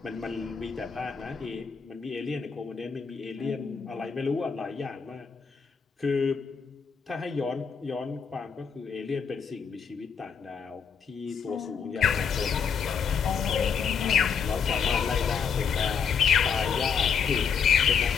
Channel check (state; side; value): quieter; right; 6.4 dB